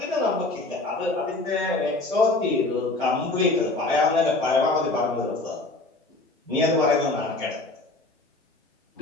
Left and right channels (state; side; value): quieter; right; 3.1 dB